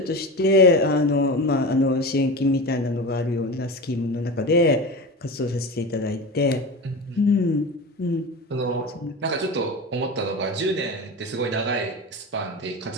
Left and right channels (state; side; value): normal; both; correlation 0.27